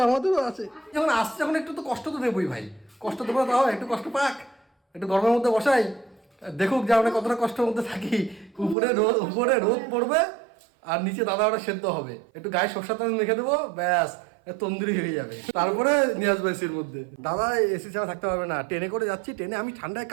আমাদেরও আছে। যখন আসছে যখন একটু তো কষ্ট তো দেবোই ভাই, কষ্ট দেবো না তাও একটু কষ্ট পাক, একটু গরমের মধ্যে বসাই, দেখুক যে আমরা কতটা কষ্টের মধ্যে থাকি। উপরে রোদ পড়বে আর নিচে দাদা ওরা সেদ্ধ হবে, একটু গায়ে সরষের তেল মেখে দেবো, ব্যাস তন্দুরি হয়ে যাবে। তারপরে নিয়ে আসবো এসির মধ্যে। দাদা এসি ছাড়া থাকতে পারবে না, ট্রেনে করে যাচ্ছি, ট্রেনে আমি ঠান্ডায়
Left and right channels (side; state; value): left; drops out; at 8.8 s